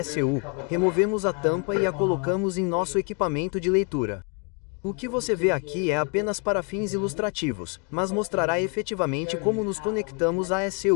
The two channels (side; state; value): right; quieter; 34.9 dB